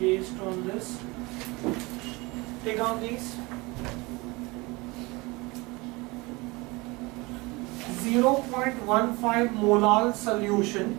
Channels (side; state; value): left; quieter; 24.4 dB